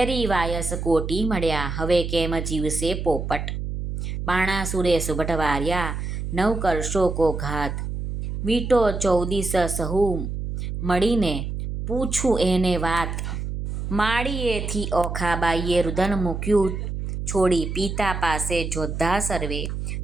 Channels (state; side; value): noise; right; hum, 4 dB below the sound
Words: વાયસ કોટી મળ્યા હવે કેમ જીવશે પોપટ, બાણાસુરે સુભટ વાર્યા નવ કરશો કો ઘાત. વીંટો 14 સહુ મળીને પૂછું એને વાત, માળીએથી ઓખાબાઈએ રુદન મૂક્યું છોડી. પિતા પાસે જોદ્ધા સર્વે